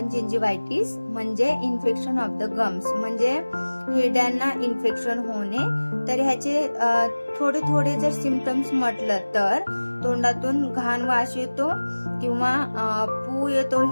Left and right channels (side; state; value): both; inverted; correlation -1.00